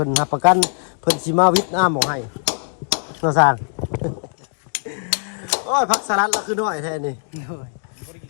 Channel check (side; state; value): right; silent; 65 dB below the other